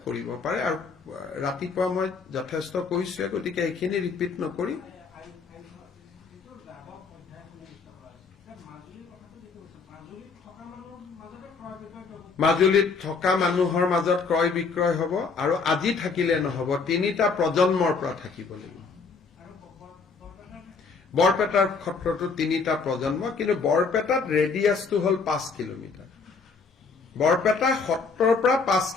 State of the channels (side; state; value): right; quieter; 4.8 dB